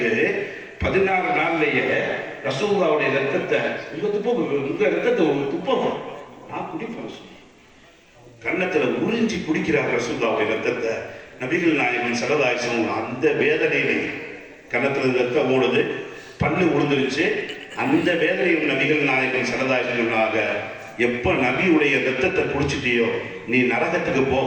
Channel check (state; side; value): identical; both; correlation 1.00